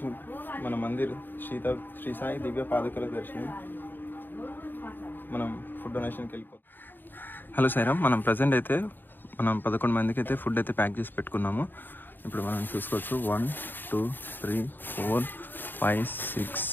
మన మందిర్ శ్రీ సాయి దివ్య పాదుకల దర్శనం. మనం ఫుడ్ డొనేషన్కి వెళ్ళిపోతాం. హలో సైరం, మనం ప్రజెంట్ అయితే 11 మందికి అయితే ఫుడ్ అయితే ప్యాక్ చేసి పెట్టుకున్నాము. ఇప్పుడు మనం చూసుకోవచ్చు 1 2 3 4 5 6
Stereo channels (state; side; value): late; right; 0.093 ms